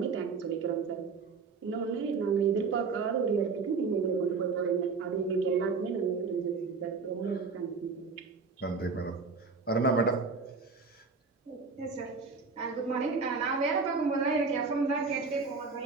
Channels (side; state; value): left; quieter; 4.7 dB